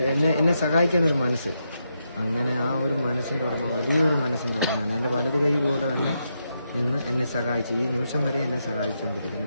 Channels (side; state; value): both; inverted; correlation -0.83